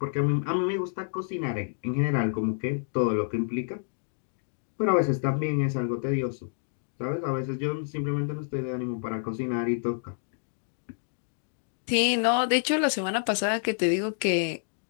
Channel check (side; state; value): right; silent; digital silence